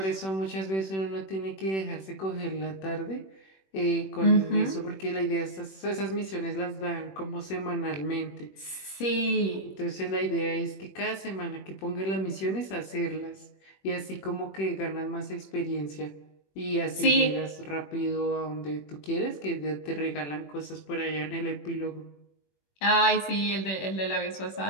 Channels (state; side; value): late; right; 21 ms